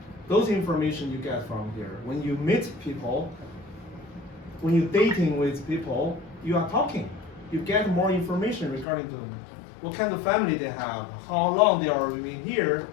those information you get from here. When you meet people, when you're dating with people, you are talking. You get more information regarding them. What kind of family they have, how long they are living here,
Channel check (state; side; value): drops out; right; at 8.8 s